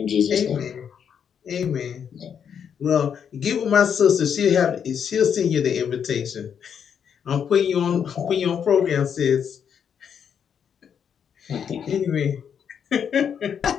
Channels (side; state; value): right; quieter; 7.8 dB